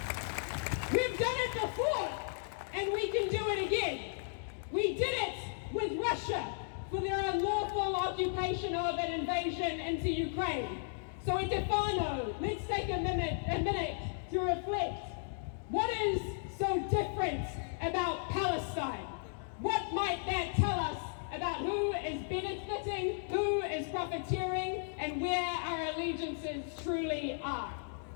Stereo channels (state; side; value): silent; right; digital silence